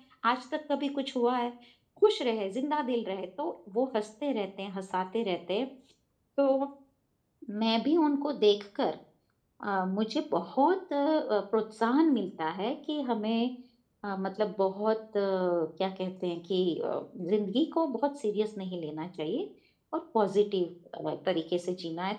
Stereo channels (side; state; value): both; identical; correlation 1.00